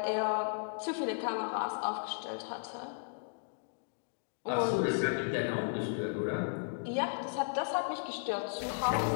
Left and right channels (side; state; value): right; silent; digital silence